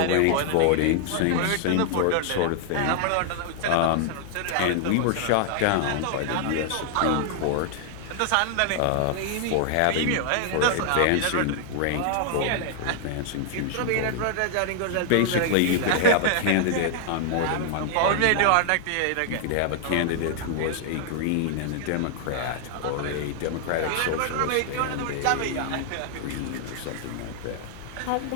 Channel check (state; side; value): different; both; correlation 0.00